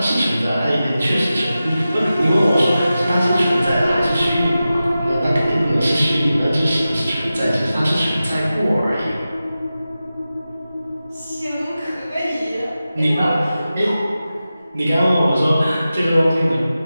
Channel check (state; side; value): inverted; both; correlation -0.94